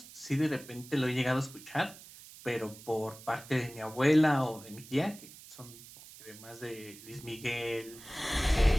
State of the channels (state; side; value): noise; right; hiss, 18 dB below the sound